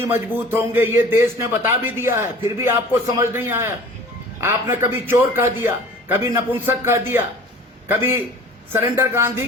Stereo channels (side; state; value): both; normal; correlation 0.44